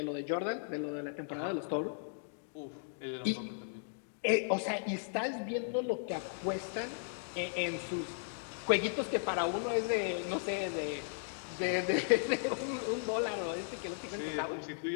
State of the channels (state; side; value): silent; right; digital silence